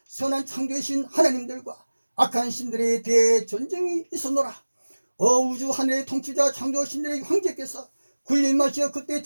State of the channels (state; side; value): inverted; both; correlation -1.00